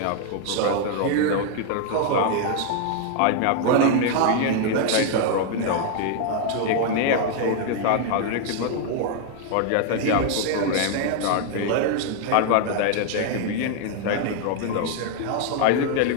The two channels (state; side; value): different; both; correlation 0.00